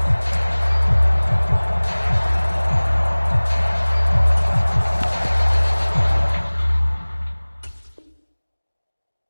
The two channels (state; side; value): inverted; both; correlation -1.00